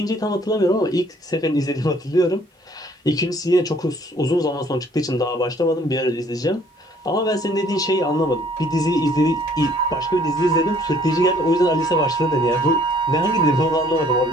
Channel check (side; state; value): both; normal; correlation 0.59